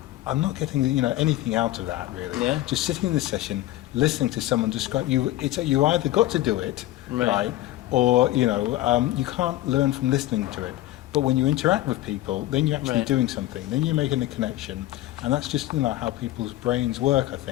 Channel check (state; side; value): quieter; right; 15.6 dB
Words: I'm not getting anything out of that really. Yeah. Just sitting in the session, listening to someone describe you. You either got to do it, right, or you can't learn from listening to it. But when you interact with people, then you're actually Right. doing something. Then you're making a connection, and that's just how people's brains work. I